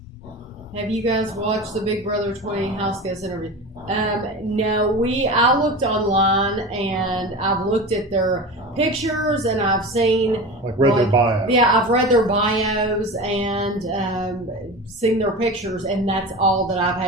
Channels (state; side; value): normal; both; correlation 0.30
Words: Have you guys watched the Big Brother 20 house guest interview? No, I looked online and I've looked at their pictures and I've seen Their bio. Yeah, I've read their bios and seen their pictures, and that's all that I've